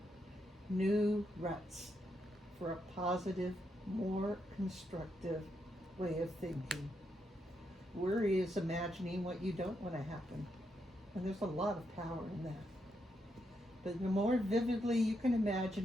for a positive, more constructive way of thinking. Worry is imagining what you don't want to happen. And there's a lot of power in that. But the more vividly you can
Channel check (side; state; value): both; normal; correlation 0.81